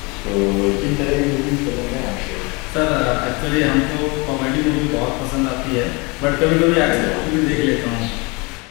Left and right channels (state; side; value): quieter; right; 27.9 dB